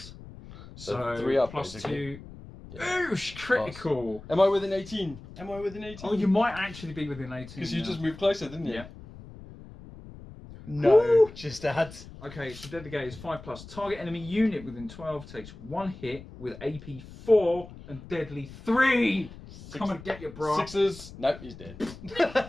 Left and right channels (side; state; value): left; noise; rumble, 16 dB below the sound